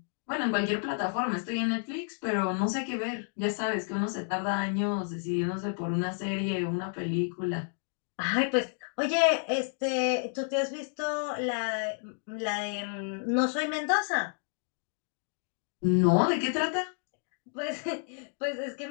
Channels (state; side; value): silent; right; 57 dB below the other